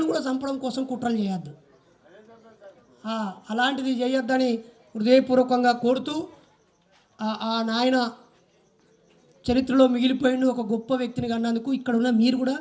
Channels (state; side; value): identical; both; correlation 1.00